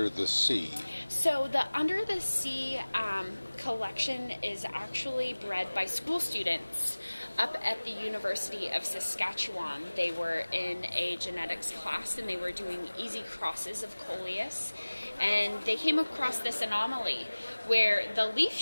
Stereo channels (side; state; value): both; inverted; correlation -1.00